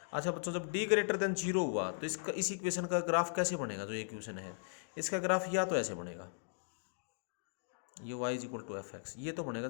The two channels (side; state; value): right; silent; digital silence